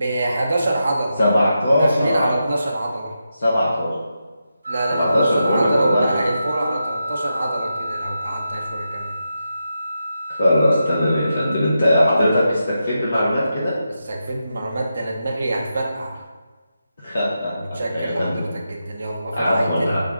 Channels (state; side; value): inverted; both; correlation -0.87